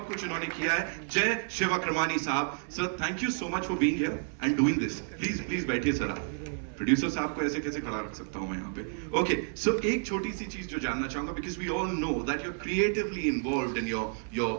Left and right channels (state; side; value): silent; left; 57 dB below the other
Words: कुछ इन्होंने किया है. जय शिवक्रमानी साहब. Sir, thank you so much for being here and doing this. Please बैठिए सर आप. प्रोड्यूसर साहब को ऐसे कैसे खड़ा रख सकता हूं मैं यहाँ पे? ओके, सो एक छोटी सी चीज जो जानना चाहूंगा, because we all know that you are creatively involved in